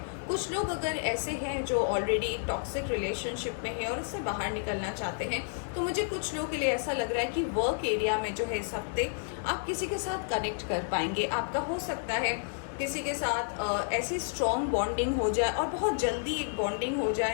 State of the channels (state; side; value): silent; right; digital silence